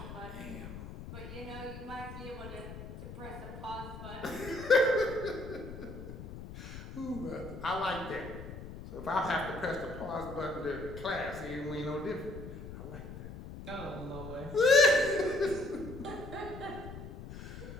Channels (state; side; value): noise; left; rumble, 11 dB below the sound